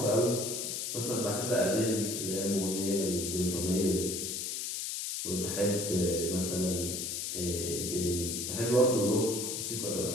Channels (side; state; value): left; noise; hiss, 3 dB below the sound